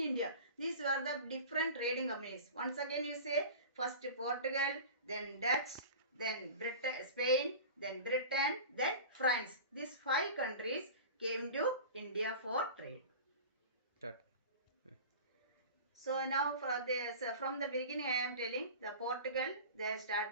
These were the different trading companies. Once again you say first Portugal, then Dutch, then Spain, then Britain, then France. These 5 countries came to India for trade. So now from the beginning I am telling the Portugal,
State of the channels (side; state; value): both; inverted; correlation -0.35